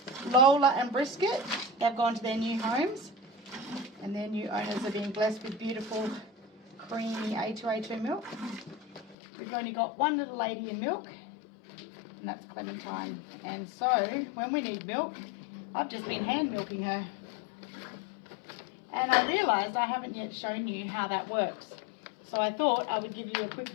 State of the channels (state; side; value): drops out; right; at 9.2 s